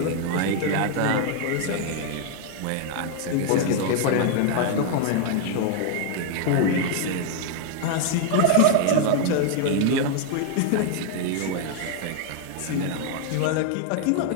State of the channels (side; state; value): both; different; correlation 0.00